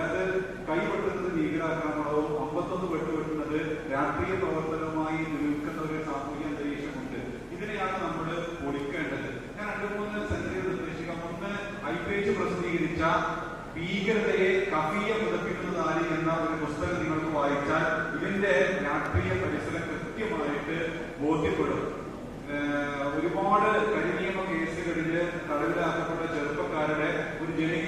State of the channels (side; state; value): both; identical; correlation 1.00